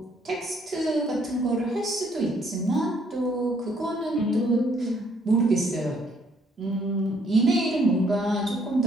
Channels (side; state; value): both; normal; correlation 0.67